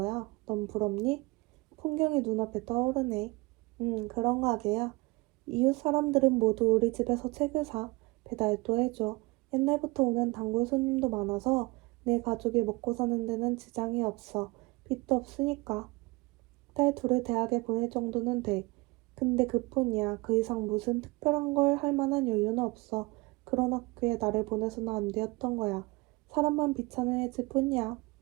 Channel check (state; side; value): quieter; left; 24.5 dB